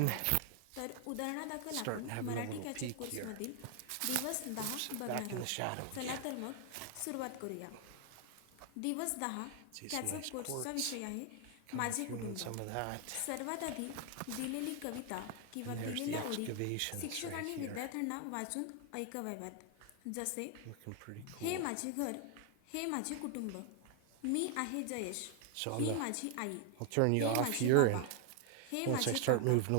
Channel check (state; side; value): different; both; correlation 0.00